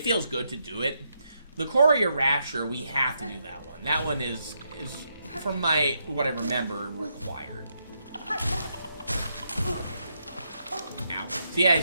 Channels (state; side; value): inverted; both; correlation -0.80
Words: feels good to do it. The Courier Rasher, we have to do that one. That one is from what I remember, required. Now, so yeah,